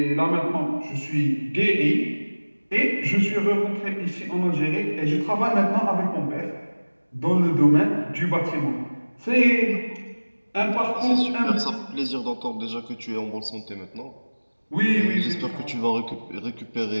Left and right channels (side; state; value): both; inverted; correlation -1.00